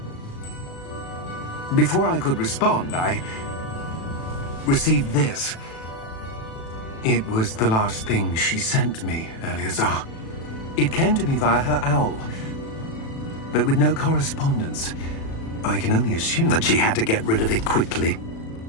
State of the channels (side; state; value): right; late; 36 ms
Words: Before I could respond, I received this. It was the last thing she sent me, Eleazar. It came to me via her owl, but with no correspondence. I can only assume That she had to get rid of it quickly,